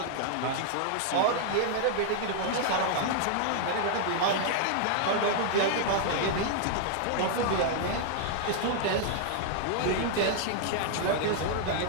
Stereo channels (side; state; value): both; different; correlation -0.01